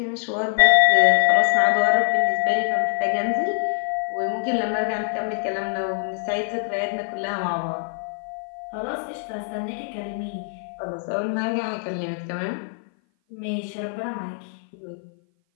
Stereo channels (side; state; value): right; silent; 57 dB below the other